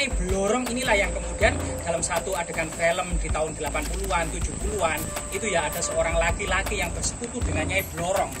Blorong inilah yang kemudian dalam satu adegan film di tahun 80-an, 70-an itu ya ada seorang laki-laki yang bersekutu dengan Nyai Blorong,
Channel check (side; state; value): both; identical; correlation 1.00